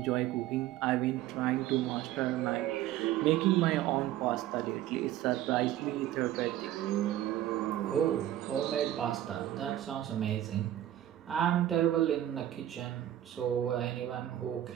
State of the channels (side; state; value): left; quieter; 12.9 dB